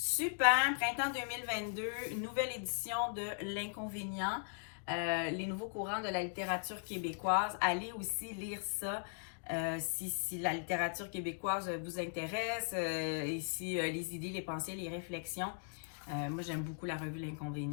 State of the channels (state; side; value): silent; right; digital silence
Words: printemps 2022, une nouvelle édition de L'Inconvénient, les nouveaux courants de la littérature québécoise. Allez aussi lire ça si la littérature québécoise vous intéresse et si les idées, les pensées, les réflexions. Moi, j'aime beaucoup la revue